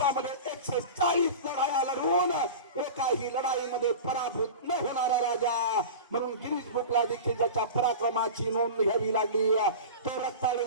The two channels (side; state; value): both; inverted; correlation -0.32